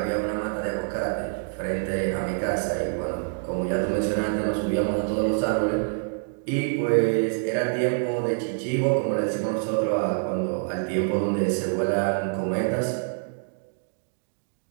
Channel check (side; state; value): left; silent; digital silence